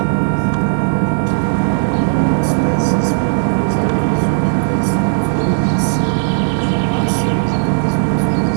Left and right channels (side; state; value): left; silent; 57 dB below the other